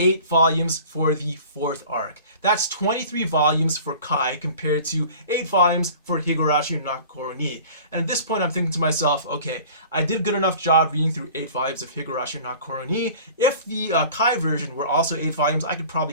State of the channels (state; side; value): inverted; both; correlation -0.44